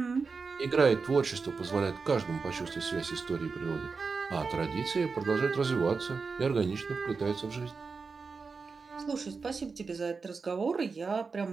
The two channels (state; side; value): quieter; left; 4.7 dB